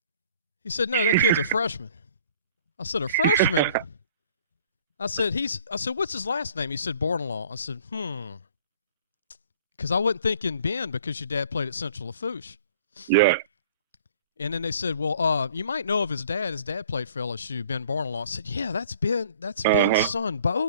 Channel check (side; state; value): both; inverted; correlation -0.53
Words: He said, no, that kid's a freshman. I said, a freshman? I said, what's his last name? He said, Bordelon. I said, because I wasn't thinking Ben because your dad played at Central Lafourche. Yeah. And then they said, well, you might know of his dad. His dad played for LSU, Ben Bordelon. I said, yeah, that's Ben. That's Ben's son,